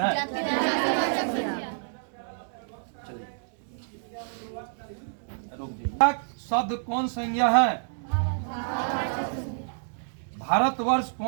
शब्द कौन संज्ञा है? भारतवर्ष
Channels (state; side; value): silent; left; digital silence